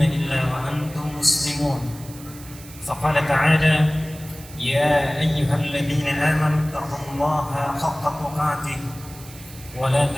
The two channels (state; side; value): noise; right; hiss, 18 dB below the sound